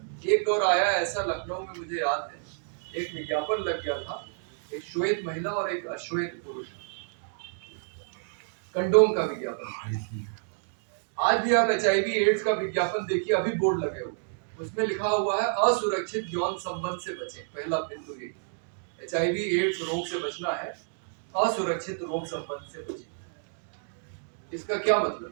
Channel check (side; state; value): left; silent; digital silence